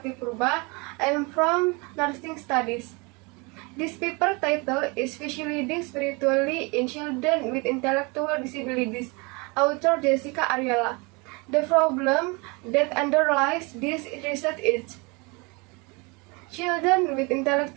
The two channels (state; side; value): quieter; left; 28.6 dB